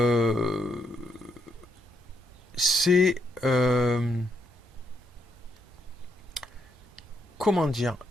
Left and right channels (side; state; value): both; normal; correlation 0.76